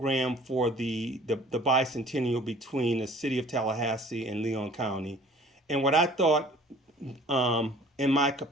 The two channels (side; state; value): both; normal; correlation 0.50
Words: for the bicentennial between the city of Tallahassee and Leon County. And what I thought, in my